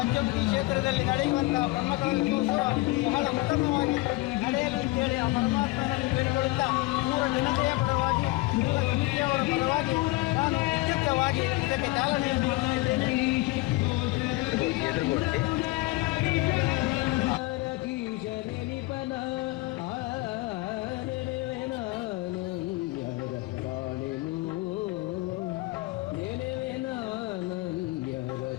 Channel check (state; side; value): quieter; right; 20.9 dB